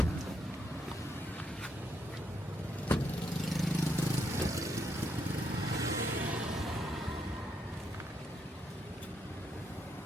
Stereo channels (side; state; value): both; normal; correlation 0.77